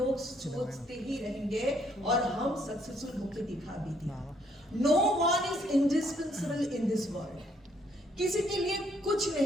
सोचते ही रहेंगे और हम सक्सेसफुल होके दिखा भी दिया। No one is indispensable in this world, किसी के लिए कुछ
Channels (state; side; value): normal; both; correlation 0.69